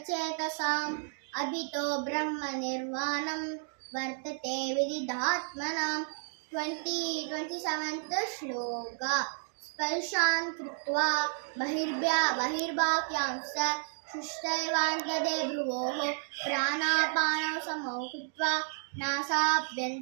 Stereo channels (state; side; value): silent; left; 57 dB below the other